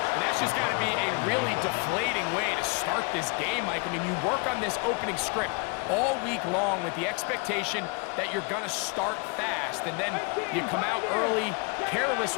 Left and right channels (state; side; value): quieter; right; 33.0 dB